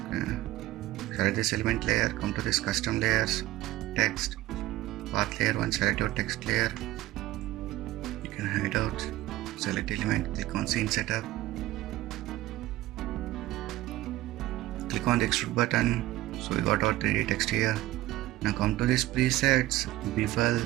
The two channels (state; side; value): quieter; left; 16.5 dB